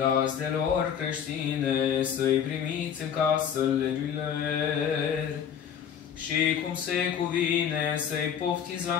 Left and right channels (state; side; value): quieter; right; 8.4 dB